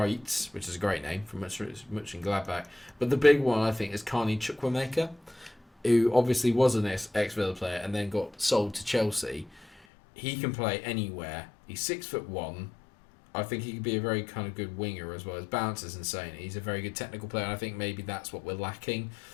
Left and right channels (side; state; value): right; drops out; at 9.8 s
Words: which is a great name from Mönchengladbach. But the big one, I think, is Carney Chukwuemeka, who obviously was an ex-Villa player and then got sold to Chelsea. He can play anywhere. He's 6'1". I think he could be a very kind of good winger as well. His balance is insane. He's a very good technical player, and I think maybe that's what we're lacking